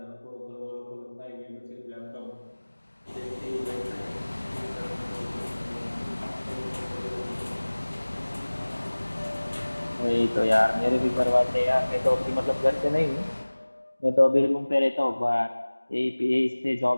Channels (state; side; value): inverted; both; correlation -1.00